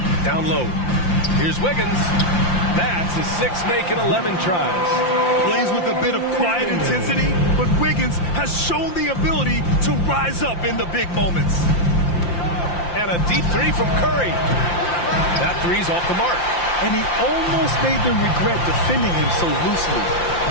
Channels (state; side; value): late; right; 5.8 ms